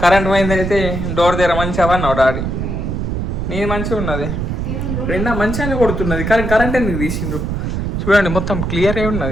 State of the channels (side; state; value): right; noise; rumble, 2 dB below the sound